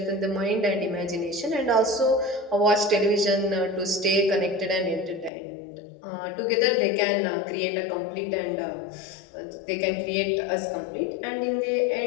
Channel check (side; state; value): right; drops out; at 5.3 s